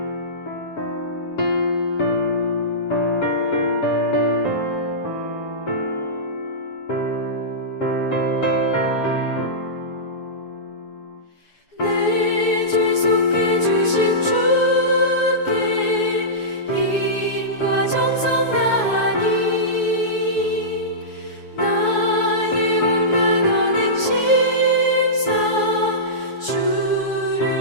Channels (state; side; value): late; right; 7.1 ms